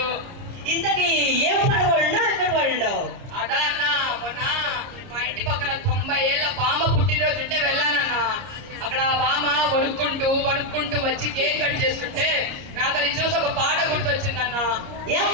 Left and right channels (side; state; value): left; late; 30 ms